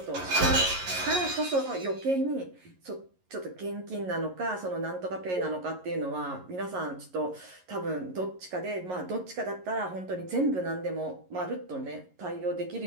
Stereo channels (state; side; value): late; left; 11 ms